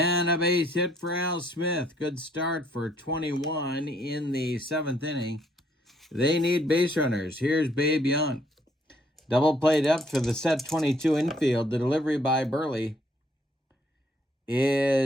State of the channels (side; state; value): both; normal; correlation 0.67